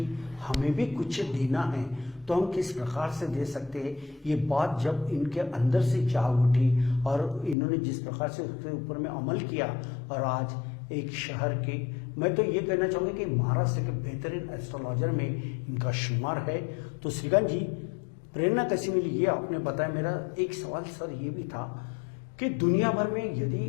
हमें भी कुछ देना है, तो हम किस प्रकार से दे सकते हैं। ये बात जब इनके अंदर से जाग उठी और इन्होंने जिस प्रकार से उसके ऊपर में अमल किया और आज एक शहर के, मैं तो ये कहना चाहूँगा कि महाराष्ट्र के बेहतरीन एस्ट्रोलॉजर में इनका शुमार है। तो श्रीकांत जी, प्रेरणा कैसी मिली ये आपने बताया। मेरा एक सवाल सर ये भी था कि दुनिया भर में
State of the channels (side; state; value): right; drops out; at 7.6 s